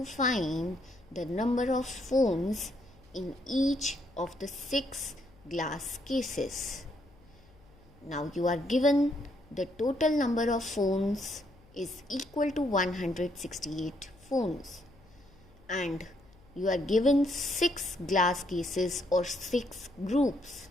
find the number of phones in each of the 6 glass cases. Now you are given the total number of phones is equal to 168 phones, and you are given 6 glass cases or 6 groups.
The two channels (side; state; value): left; noise; hum, 26 dB below the sound